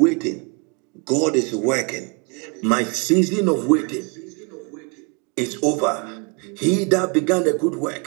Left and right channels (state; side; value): quieter; left; 32.3 dB